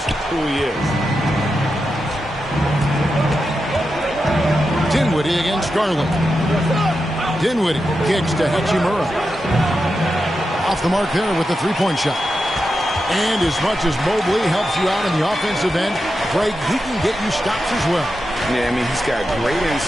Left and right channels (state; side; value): normal; both; correlation 0.89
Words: who he is. Dinwiddie against Garland. Dinwiddie kicks to Hachimura. Off the mark there with the three-point shot. And as much as Mobley helps you out in the offensive end, Craig, he can get you stops as well. Yeah, I mean, he's got great